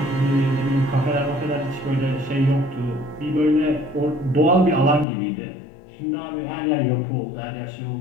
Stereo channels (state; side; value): drops out; right; at 5.1 s